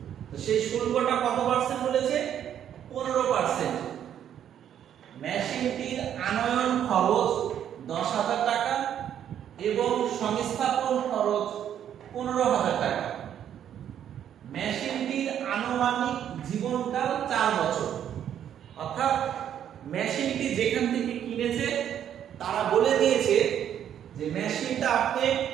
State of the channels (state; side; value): quieter; left; 9.8 dB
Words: তো সেই শুল্কটা কত পার্সেন্ট বলেছে? 15%। মেশিনটির আনয়ন খরচ 10,000 টাকা এবং সংস্থাপন খরচ 15,000 টাকা। মেশিনটির আনুমানিক জীবনকাল 4 বছর। অর্থাৎ মেশিনটি যেখান থেকে কিনেছে তারা বলে দিয়েছে যে মেশিনটা আপনি